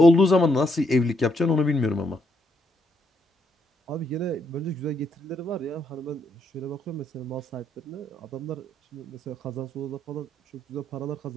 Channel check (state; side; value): normal; both; correlation 0.75